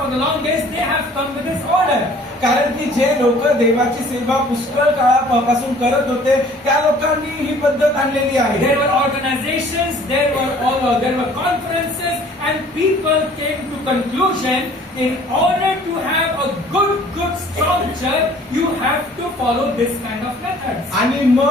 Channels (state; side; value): normal; both; correlation 0.53